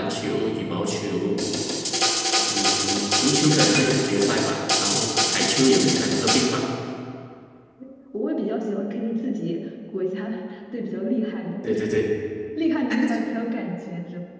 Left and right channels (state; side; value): identical; both; correlation 1.00